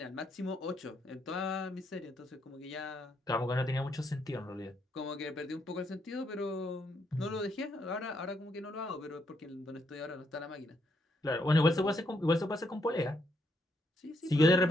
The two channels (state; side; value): normal; both; correlation 0.75